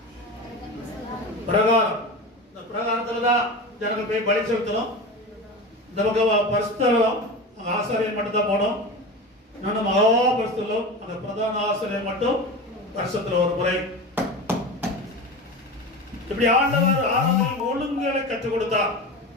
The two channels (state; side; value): normal; both; correlation 0.27